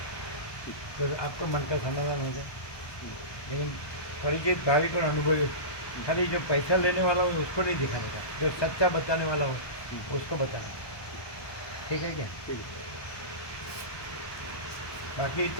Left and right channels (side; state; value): right; late; 1.2 ms